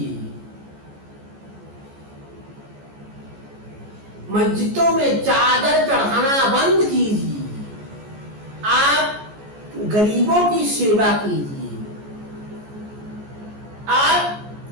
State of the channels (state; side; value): late; left; 14 ms